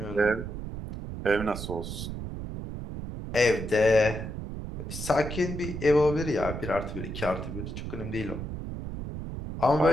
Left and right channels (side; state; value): right; noise; rumble, 7 dB below the sound